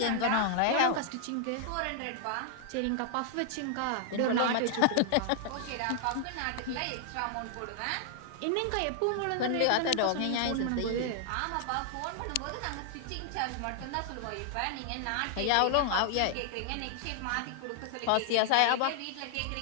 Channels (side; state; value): both; different; correlation 0.00